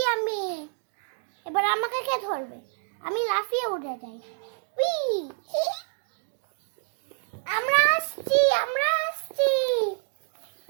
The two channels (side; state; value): left; silent; digital silence